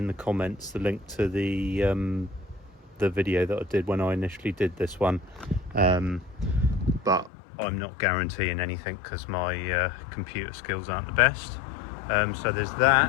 the comments, the link to the video that I did when I initially did this one. But I'm not guaranteeing anything because my computer skills aren't the best. So there's that.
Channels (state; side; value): drops out; right; at 7.3 s